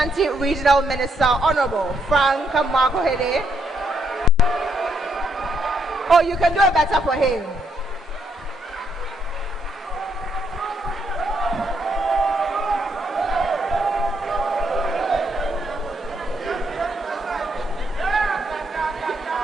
Regional Minister, Honorable Frank Makohede. Oh, you can do it better for him.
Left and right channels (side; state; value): both; normal; correlation 0.74